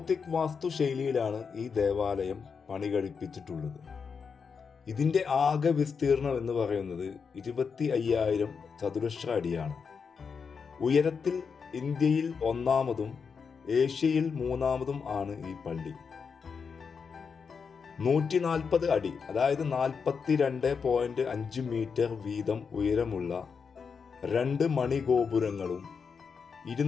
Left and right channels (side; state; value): right; quieter; 5.8 dB